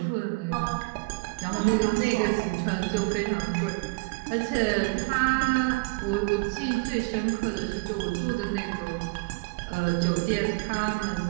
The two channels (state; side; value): quieter; left; 28.1 dB